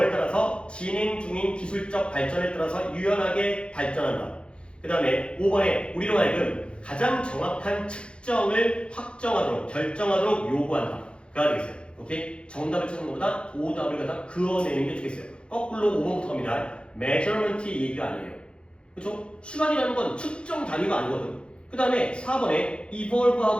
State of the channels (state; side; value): late; right; 0.056 ms